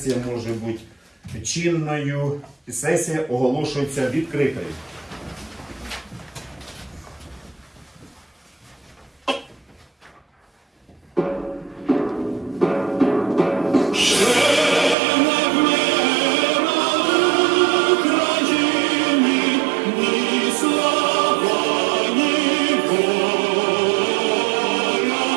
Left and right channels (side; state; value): left; drops out; at 15.0 s